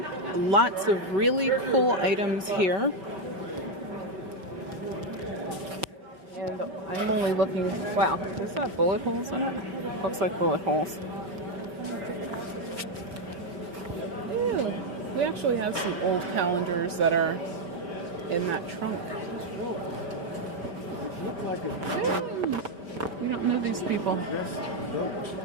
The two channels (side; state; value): left; late; 5.2 ms